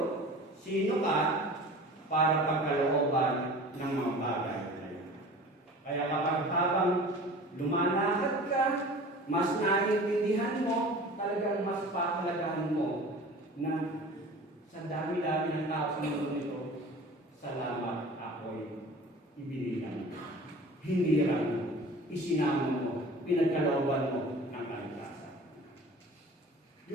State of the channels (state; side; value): normal; both; correlation 0.41